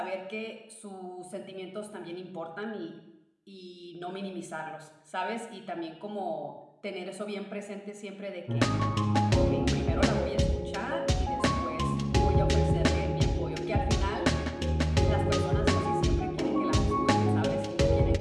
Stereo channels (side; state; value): both; identical; correlation 1.00